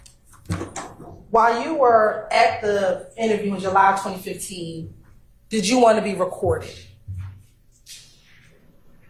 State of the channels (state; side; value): identical; both; correlation 1.00